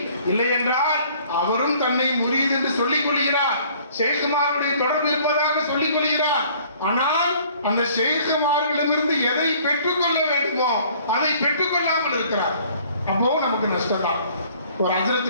இல்லை என்றால் அவரும் தன்னை முரீத் என்று சொல்லிக் கொள்கிறார், ஷேகுமாருடைய தொடர்பு இருப்பதாக சொல்லிக் கொள்கிறார். ஆனால் அந்த ஷேகுமார்களிடமிருந்து எதை பெற்றுக்கொள்ள வேண்டுமோ அதை பெற்றுக்கொள்ளாமல் இருக்கிறார். அப்போ நமக்கு நஷ்டம் தான். ஒரு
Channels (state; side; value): inverted; both; correlation -0.56